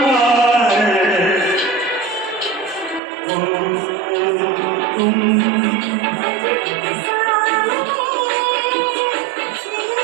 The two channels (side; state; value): left; drops out; at 3.0 s